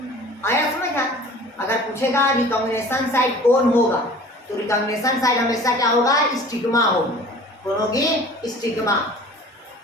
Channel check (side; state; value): both; normal; correlation 0.45